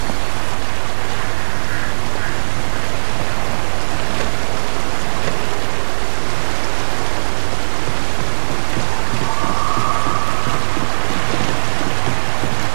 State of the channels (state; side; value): silent; left; digital silence